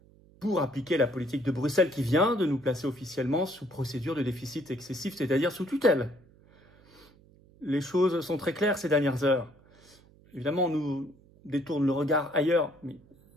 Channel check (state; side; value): noise; right; hum, 27 dB below the sound